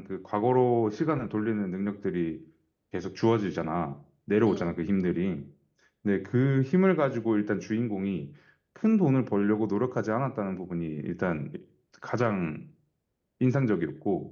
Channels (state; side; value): identical; both; correlation 1.00